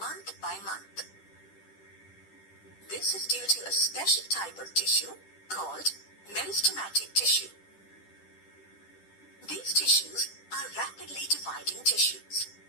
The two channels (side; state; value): right; late; 10 ms